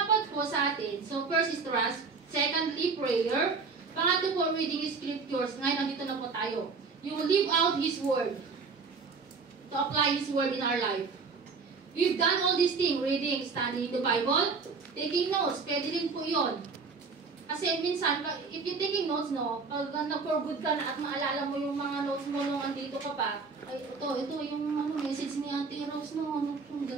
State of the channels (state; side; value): quieter; left; 4.8 dB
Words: po sa atin. So, first is trust. Secondly, prayer. Pangatlo po, reading scriptures. Ngayon, nandito na po tayo. You will live out His Word. To apply His Word in our life. We've done all these things. Reading, studying the Bible, taking notes. Pwede rin po yun. Kasi minsan, if you're taking notes, no, pag nag-for good ka na at maalala mo yung mga notes mo nung andito ka pa, ay, ito yung message ni Ate Rose, no, ang